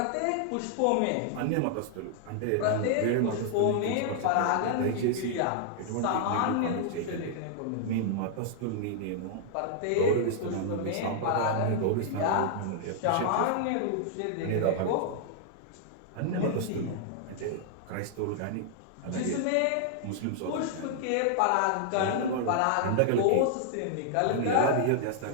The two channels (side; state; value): both; different; correlation -0.01